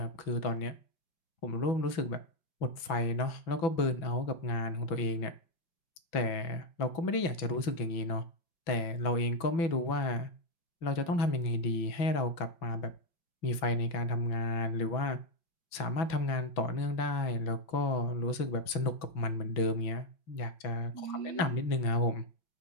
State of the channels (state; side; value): late; right; 6.0 ms